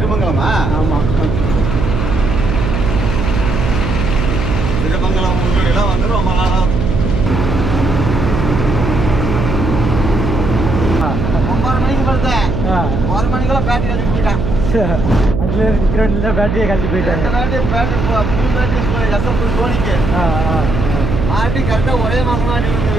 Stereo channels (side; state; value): right; noise; hum, 2 dB below the sound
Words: ஆமாம். திருமங்கலம் ஊரில் வந்து ரொம்ப நாளாக 9 மணிக்கு பார்த்தேன். 1 மணிக்கெல்லாம் பேட்டரி கழிச்சு போயிட்டான். அதில் இருக்கிற பேட்டரியை கழிச்சு போயிட்டாங்க. புது பேட்டரி எஸ்எம் சோனிக்கு மாட்டி கரெக்டாக ஒரே மாதம் மாட்டி